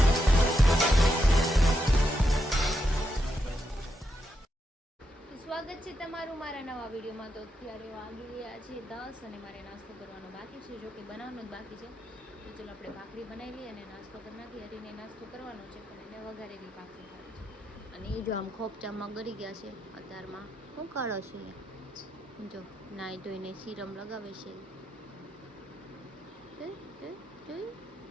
સ્વાગત છે તમારું મારા નવા વિડીયોમાં. તો અત્યારે વાગી ગયા છે 10 અને મારે નાસ્તો કરવાનો બાકી છે, જો કે બનાવવાનો જ બાકી છે. તો ચલો આપણે ભાખરી બનાવી લઈએ અને નાસ્તો કરી નાખીએ. હરીને નાસ્તો કરવાનો છે પણ એને વઘારેલી ભાખરી ખાવી છે. અને એ જો આમ ખોપચામાં ગળી ગયા છે અત્યારમાં. શું કાઢો છે જો નાઈ ધોઈને સીરમ લગાવે છે.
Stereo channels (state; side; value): normal; both; correlation 0.83